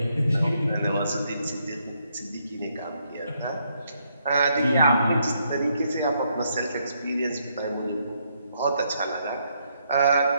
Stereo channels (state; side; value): inverted; both; correlation -0.75